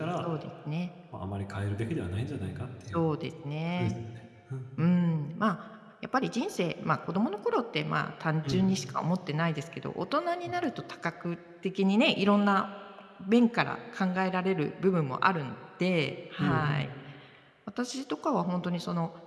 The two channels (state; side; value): identical; both; correlation 1.00